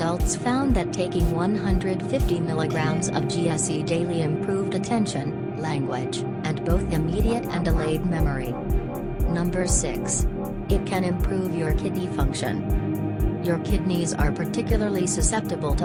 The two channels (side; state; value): both; identical; correlation 1.00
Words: found that taking 150 mg of GSE daily improved attention, language, and both immediate and delayed memory. Number 6. It can improve your kidney function. Your kidneys are particularly susceptible